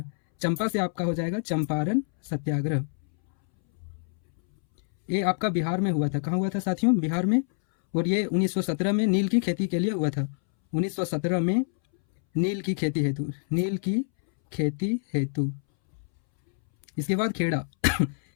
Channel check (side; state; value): right; silent; 61 dB below the other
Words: चंपा से आपका हो जाएगा चंपारण सत्याग्रह। ये आपका बिहार में हुआ था। कहाँ हुआ था साथियों? बिहार में। और ये 1917 में नील की खेती के लिए हुआ था। 1917 में नील की खेती हेतु, नील की खेती हेतु। इसके बाद खेड़ा।